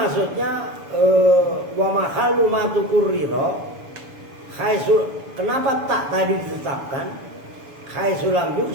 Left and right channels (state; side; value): late; left; 7.0 ms